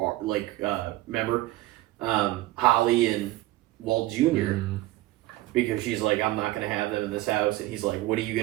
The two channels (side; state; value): left; quieter; 17.6 dB